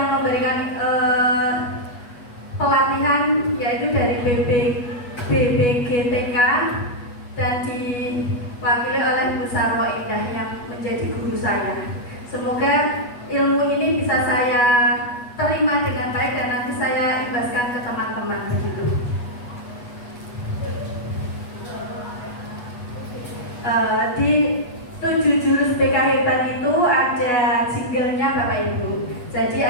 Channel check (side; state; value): right; late; 8.3 ms